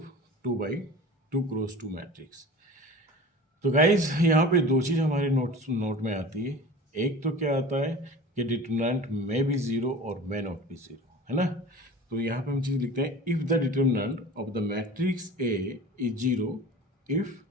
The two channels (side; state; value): both; normal; correlation 0.38